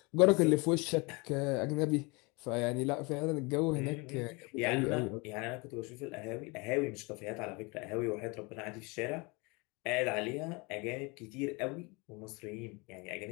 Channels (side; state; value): right; quieter; 27.8 dB